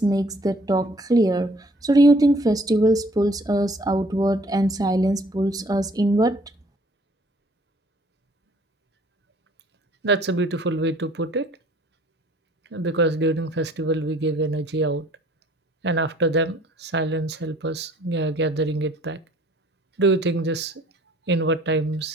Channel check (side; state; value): both; normal; correlation 0.57